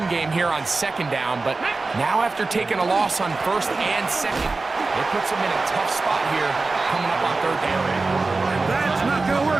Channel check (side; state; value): left; quieter; 3.7 dB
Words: game here on 2nd down. But now after taking a loss on 1st and 2nd, it puts him in a tough spot here coming up on 3rd down. And that's not going to